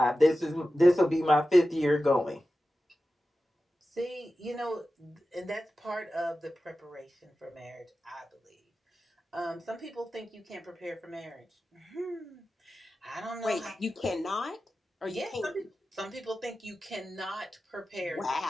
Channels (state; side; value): normal; both; correlation 0.94